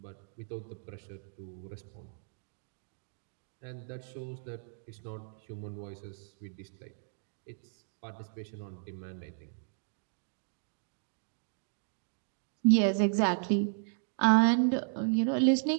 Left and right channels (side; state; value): left; silent; digital silence